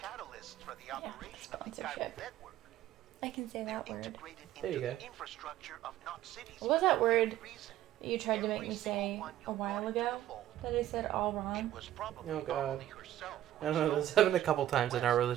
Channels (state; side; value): quieter; left; 12.9 dB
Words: Yeah, sponsorship. I can say that word. There you go. What was that word you tried to make me say a while ago? That I said all wrong? Oh god. I don't know. This happened a couple times in our